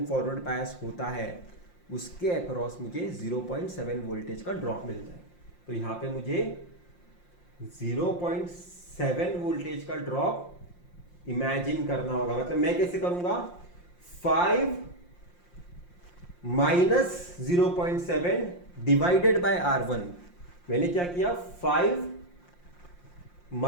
फॉरवर्ड बायस होता है उसके अक्रॉस मुझे 0.7 वोल्टेज का ड्रॉप मिलता है। तो यहाँ पे मुझे 0.7 वोल्टेज का ड्रॉप इमेजिन करना होगा। मतलब मैं कैसे करूंगा, 5 माइनस 0.7 डिवाइडेड बाय R1। मैंने क्या किया, 5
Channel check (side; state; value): right; late; 5.7 ms